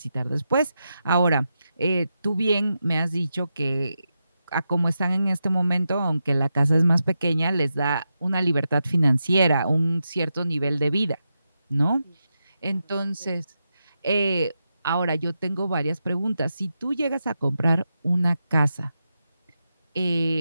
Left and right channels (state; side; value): inverted; both; correlation -0.88